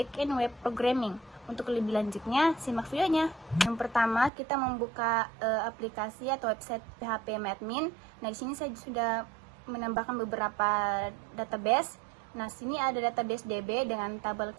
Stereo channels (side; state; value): left; drops out; at 4.3 s